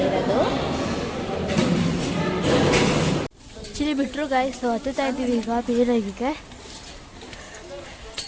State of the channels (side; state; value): both; identical; correlation 1.00